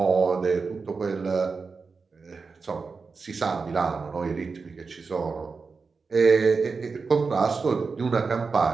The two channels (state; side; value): quieter; left; 4.7 dB